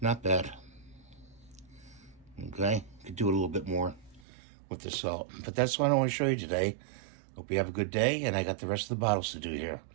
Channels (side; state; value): left; drops out; at 4.2 s